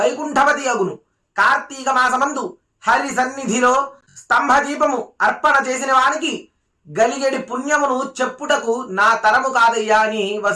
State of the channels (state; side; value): identical; both; correlation 1.00